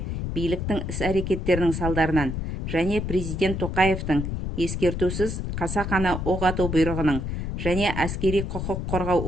биліктің іс-әрекеттерінің салдарынан және президент Тоқаевтың ескертусіз қасақана оқ ату бұйрығының және әскери құқық қорғау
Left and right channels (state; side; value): noise; left; rumble, 3 dB below the sound